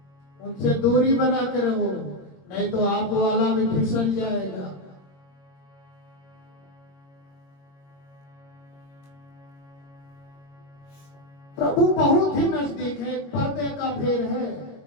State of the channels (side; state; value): right; late; 21 ms